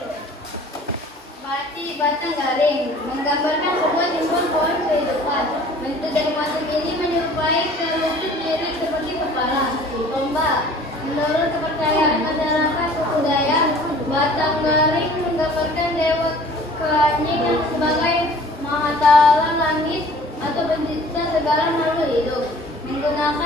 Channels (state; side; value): normal; both; correlation 0.49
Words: Mati batang garing menggambarkan sebuah simbol pohon kehidupan. Bentuk dari motif ini menyerupai kerucut diri seperti kepala domba. Menurut kepercayaan masyarakat suku Dayak, batang garing menggambarkan dewa keanyingan sebagai Mahatala langit atau pencipta segala makhluk hidup.